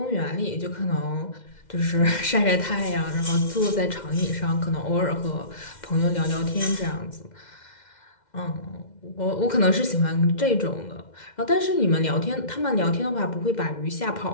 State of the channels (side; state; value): right; late; 2.1 ms